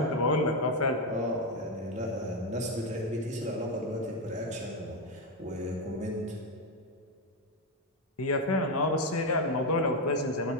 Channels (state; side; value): normal; both; correlation 0.07